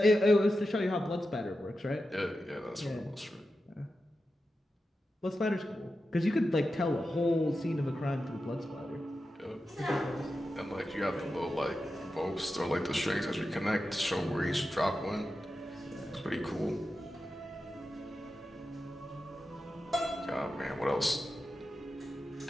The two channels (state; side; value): normal; both; correlation 0.91